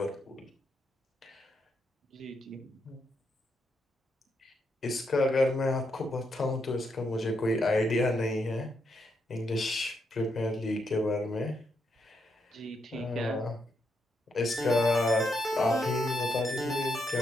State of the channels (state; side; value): normal; both; correlation 0.80